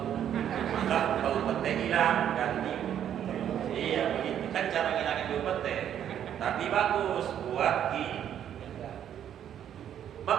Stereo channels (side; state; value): left; quieter; 9.9 dB